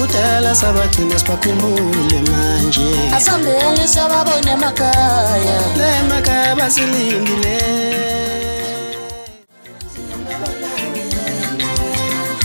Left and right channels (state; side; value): inverted; both; correlation -1.00